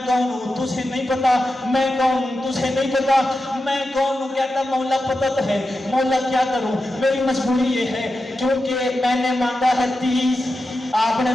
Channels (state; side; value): normal; both; correlation 0.90